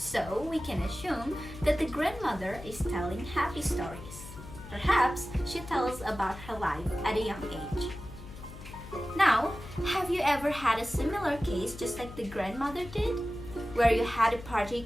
we can assume that the grandmother is telling happy stories. Perhaps she tells about her life at a young age. Now, have you ever had a similar case just like the grandmother did? Where you had a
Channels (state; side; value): noise; left; hum, 14 dB below the sound